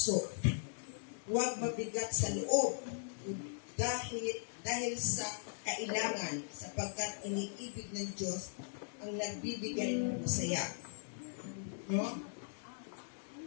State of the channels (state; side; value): silent; right; digital silence